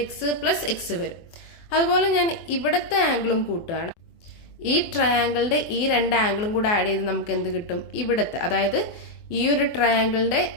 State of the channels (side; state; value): right; late; 24 ms